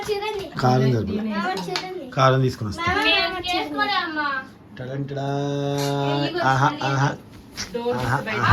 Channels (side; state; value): both; identical; correlation 1.00